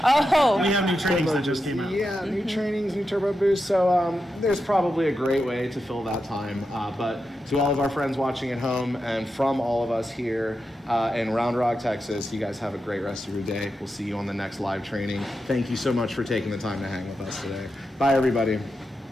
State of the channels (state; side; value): normal; both; correlation 0.88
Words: Oh, we have new trainings that just came out. Yeah, new trainings, new turbo boosts. So there's probably a great way to fill that time. But to all of our friends watching at home and from all of us here in Round Rock, Texas, you guys have a great rest of your day. We'll see you on the next live training. Thank you so much for taking the time to hang with us today. Bye, everybody.